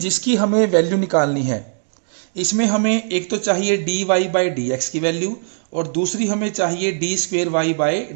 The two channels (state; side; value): silent; left; digital silence